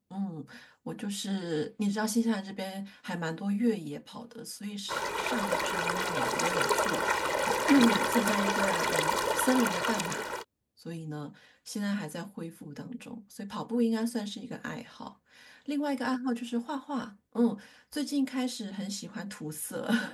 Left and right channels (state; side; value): identical; both; correlation 1.00